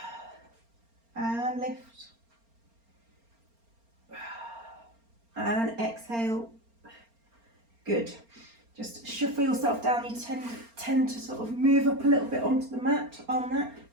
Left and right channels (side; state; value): left; late; 4.3 ms